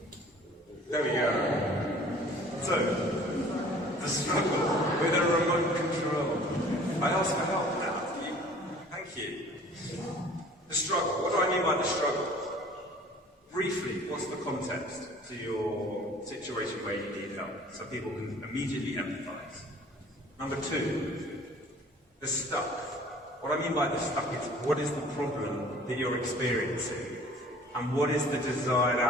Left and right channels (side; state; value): both; normal; correlation 0.49